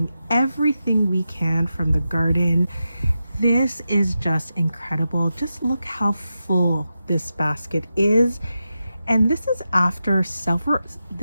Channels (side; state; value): both; inverted; correlation -0.90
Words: everything we can from the garden. This is just incredible. Just look how full this basket is. And this is after several